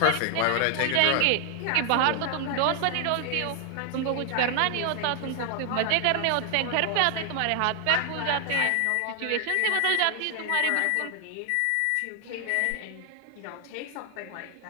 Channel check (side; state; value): both; different; correlation 0.00